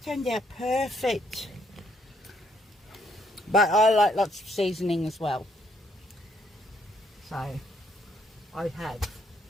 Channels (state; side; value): normal; both; correlation 0.70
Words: Turned out perfect. But I like lots of seasoning as well. So I have.